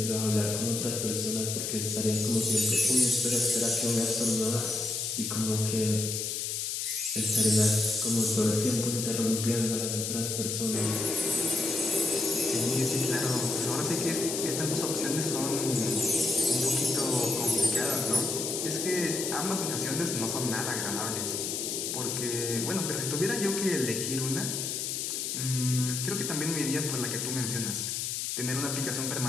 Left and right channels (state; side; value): noise; left; hiss, 2 dB below the sound